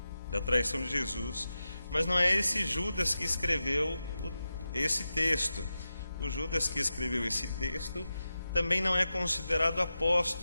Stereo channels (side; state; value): both; inverted; correlation -0.91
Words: da traição de Jesus, mas não é esse Judas que escreveu esse texto. O Judas que escreveu esse texto também não é considerado